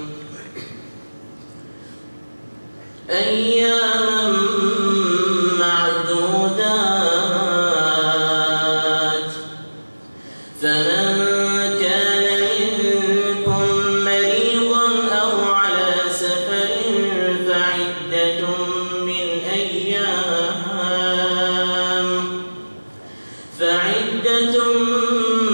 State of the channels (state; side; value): inverted; both; correlation -1.00